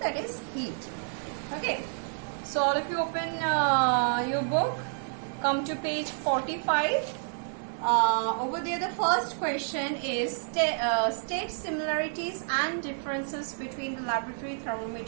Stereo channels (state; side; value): silent; left; digital silence